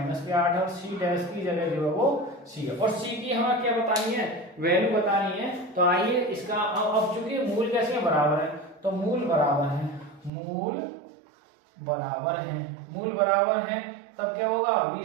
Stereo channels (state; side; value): drops out; left; at 10.3 s